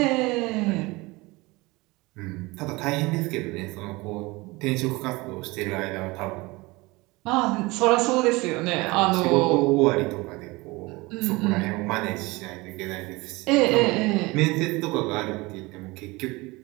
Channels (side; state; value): left; quieter; 23.0 dB